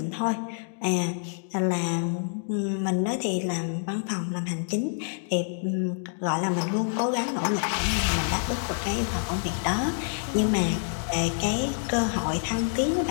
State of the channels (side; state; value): right; silent; digital silence